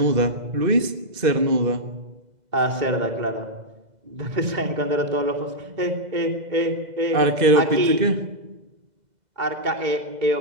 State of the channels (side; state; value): left; late; 2.0 ms